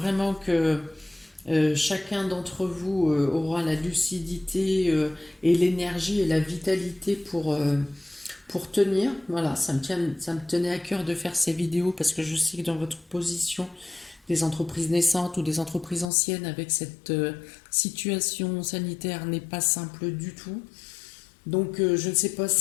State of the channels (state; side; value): drops out; right; at 16.1 s